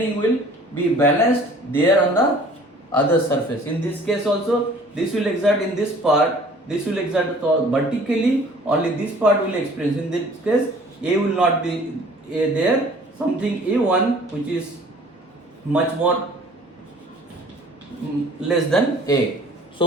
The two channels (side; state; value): both; normal; correlation 0.51